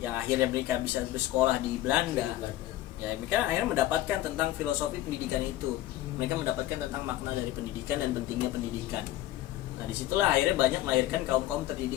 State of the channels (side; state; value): right; quieter; 14.7 dB